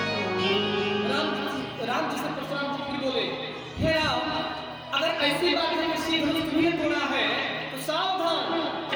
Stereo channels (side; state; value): both; identical; correlation 1.00